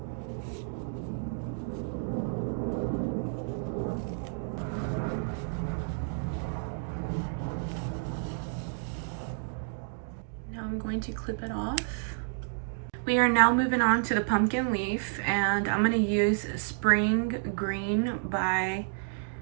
I'm going to clip it off. We are now moving on to the pumpkin leaf, and I'm going to use Spring Green by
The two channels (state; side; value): silent; left; digital silence